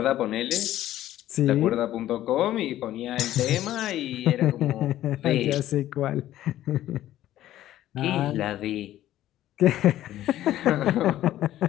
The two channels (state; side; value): quieter; right; 13.5 dB